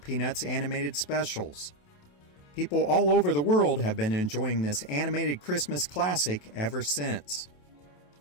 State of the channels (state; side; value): late; right; 28 ms